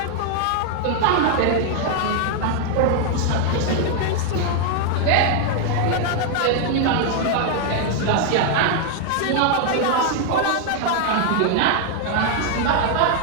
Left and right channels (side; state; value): both; different; correlation 0.00